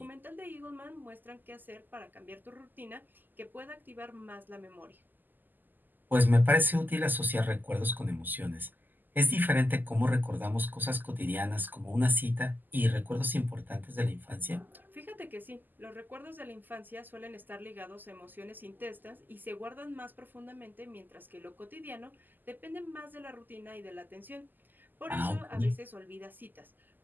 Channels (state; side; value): late; left; 0.088 ms